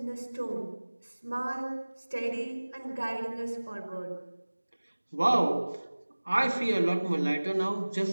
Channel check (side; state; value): both; inverted; correlation -1.00